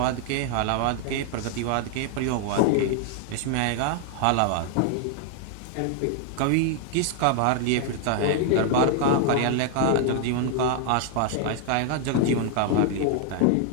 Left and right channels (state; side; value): different; both; correlation 0.00